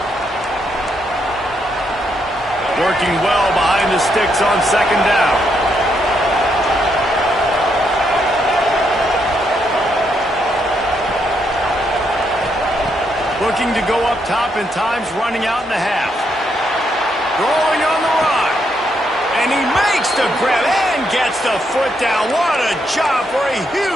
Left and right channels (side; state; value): both; normal; correlation 0.77